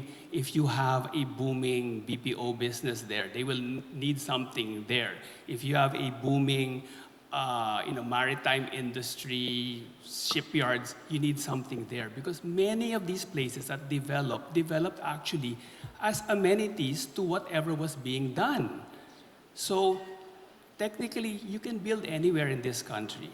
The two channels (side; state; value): both; identical; correlation 1.00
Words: if you have a booming BPO business there, they will need something there. If you have a booming maritime industry, shipyards, you need something there, because many of these places that developed actually as amenities to whatever was being done. So technically, you can build anywhere in this country